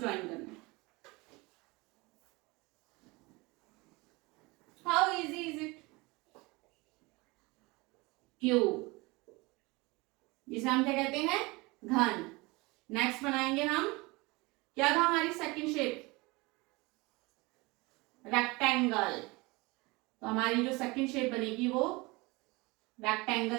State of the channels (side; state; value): left; quieter; 24.4 dB